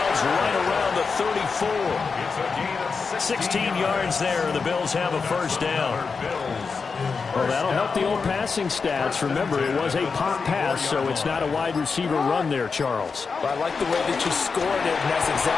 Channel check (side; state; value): right; quieter; 5.0 dB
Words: right around the 34. It's a gain of 16 yards there, and the Bills have a first down. Well, that'll help the old passing stats. Remember, it was a pop pass, so it's not a wide receiver run there, Charles. But I like the way that you scored it, and that's